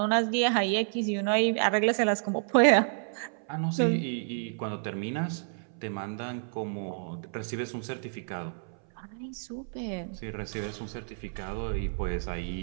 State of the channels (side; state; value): left; silent; 58 dB below the other